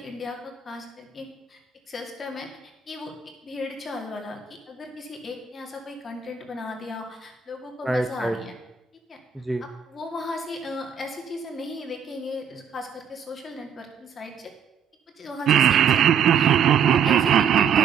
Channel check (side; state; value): left; quieter; 7.3 dB